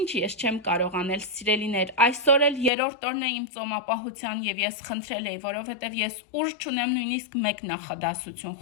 ես չեմ կարող անել, սիրելիներ, այսօր էլ երրորդ օրն է իմ ծոմապահության եւ ես խնդրել էի, որովհետեւ ես ուժ չունեմ նույնիսկ մեկ նախադասություն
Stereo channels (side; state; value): right; drops out; at 2.7 s